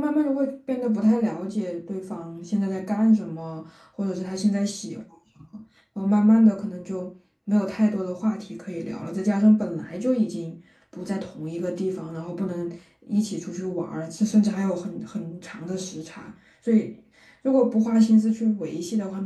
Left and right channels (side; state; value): both; identical; correlation 1.00